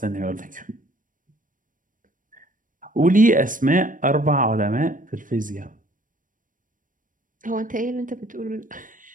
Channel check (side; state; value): left; late; 0.39 ms